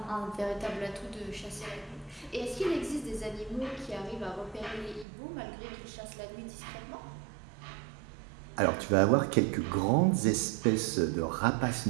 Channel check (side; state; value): left; drops out; at 5.1 s